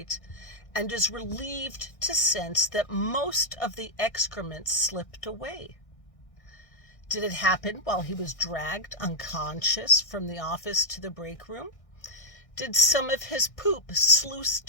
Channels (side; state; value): right; late; 1.6 ms